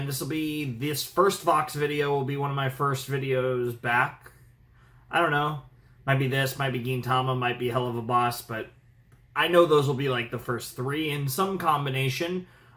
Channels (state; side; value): identical; both; correlation 1.00